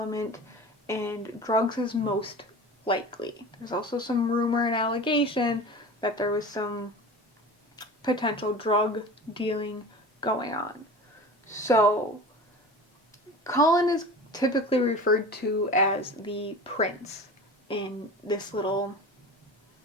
and drugs is most likely. There's also some rumor and allegation that there was some potential drug dealing going on. So, Colin is typically referred to as the prince in this little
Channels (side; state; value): both; normal; correlation 0.35